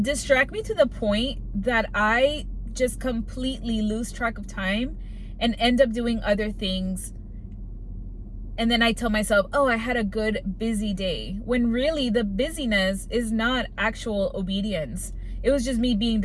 distract me to the point that I just completely lose track of time and end up doing other things. And then I tell myself, oh, I had a good busy day, when really the busyness is not actual obedience. It was just me being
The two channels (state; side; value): identical; both; correlation 1.00